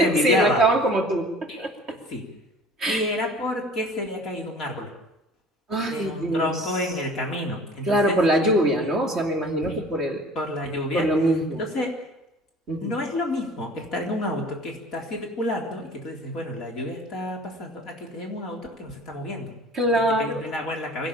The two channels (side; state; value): both; normal; correlation 0.46